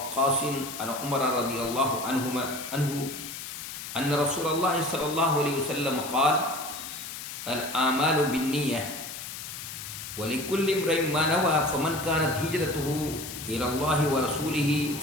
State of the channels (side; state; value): left; noise; hiss, 9 dB below the sound